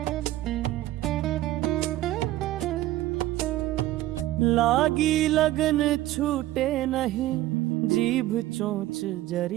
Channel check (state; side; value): quieter; left; 15.4 dB